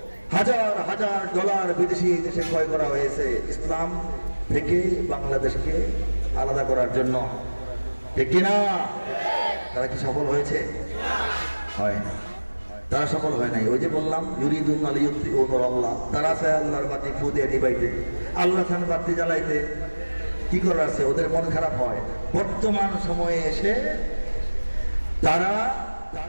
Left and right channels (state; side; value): inverted; both; correlation -1.00